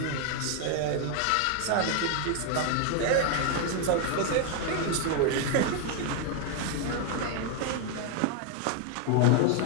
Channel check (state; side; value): different; both; correlation 0.00